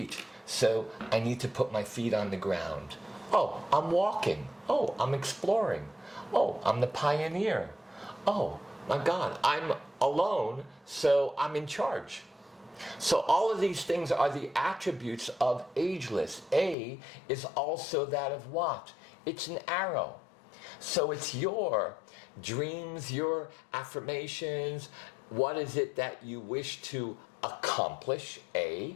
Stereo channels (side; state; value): right; drops out; at 16.8 s